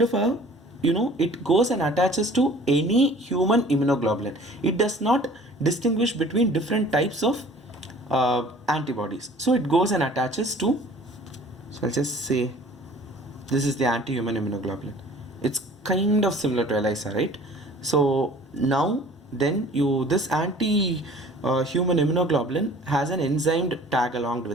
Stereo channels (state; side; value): normal; both; correlation 0.49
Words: of a, it goes and attaches to any human immunoglobulin. It does not distinguish between different types of antibodies. So it goes and attaches to, so I'll just say this is the anti-human immunoglobulin. It's kind of similar to ELISA, right? So now then this anti-human immunoglobulin has an enzyme tag along